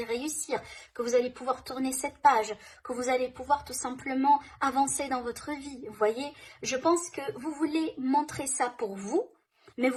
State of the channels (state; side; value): identical; both; correlation 1.00